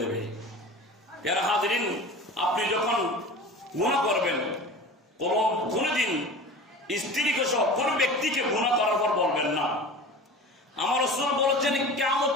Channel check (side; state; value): both; normal; correlation 0.36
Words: এর হাজিরিন, আপনি যখন গুনাহ করবেন, কোনদিন স্ত্রীকে সহ কোন ব্যক্তিকে গুনাহ করার পর বলবেন না। আমার রাসূল বলেছেন